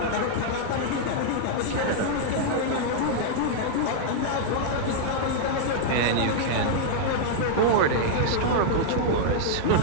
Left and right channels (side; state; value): both; different; correlation -0.01